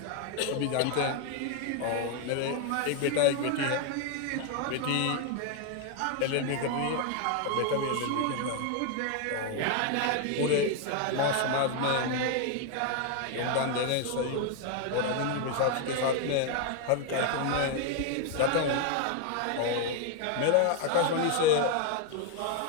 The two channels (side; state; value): both; different; correlation 0.01